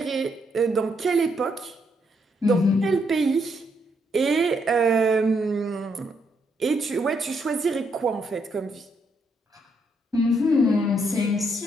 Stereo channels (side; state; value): both; normal; correlation 0.75